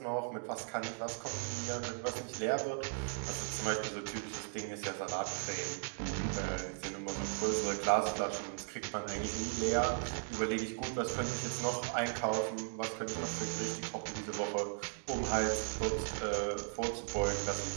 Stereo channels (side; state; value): left; silent; digital silence